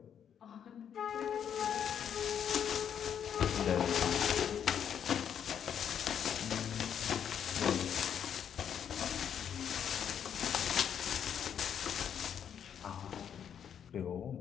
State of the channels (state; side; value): quieter; right; 8.6 dB